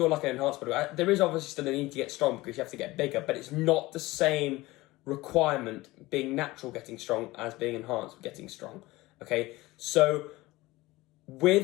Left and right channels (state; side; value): quieter; right; 19.7 dB